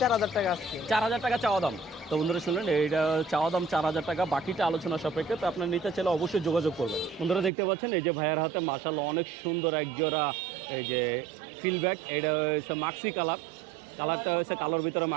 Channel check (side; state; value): left; drops out; at 7.5 s